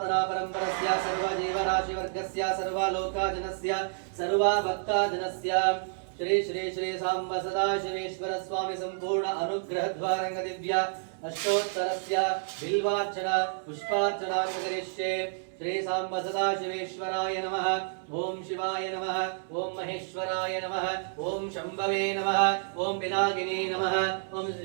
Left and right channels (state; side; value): silent; left; 58 dB below the other